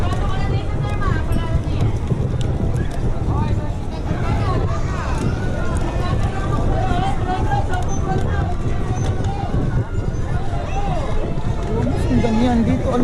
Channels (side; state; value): both; identical; correlation 1.00